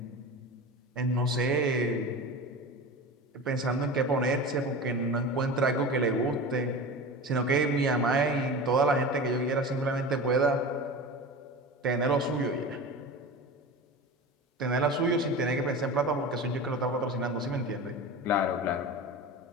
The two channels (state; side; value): normal; both; correlation 0.31